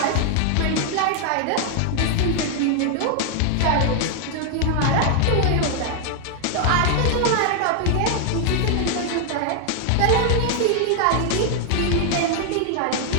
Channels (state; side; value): different; both; correlation 0.00